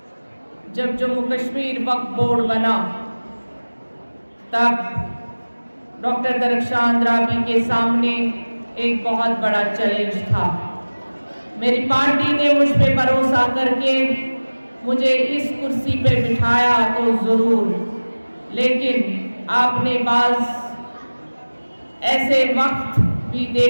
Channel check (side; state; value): both; inverted; correlation -1.00